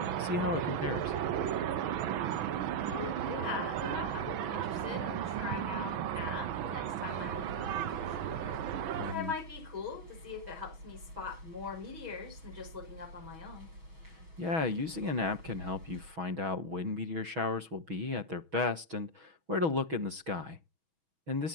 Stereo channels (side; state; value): left; late; 6.2 ms